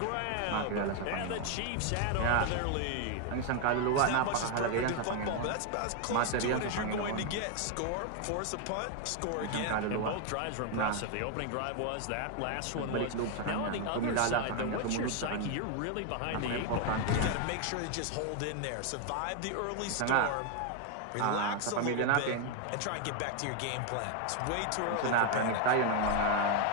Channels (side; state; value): both; different; correlation 0.01